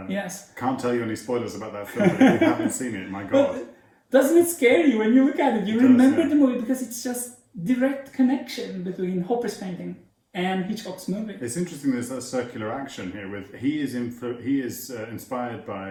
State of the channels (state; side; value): identical; both; correlation 1.00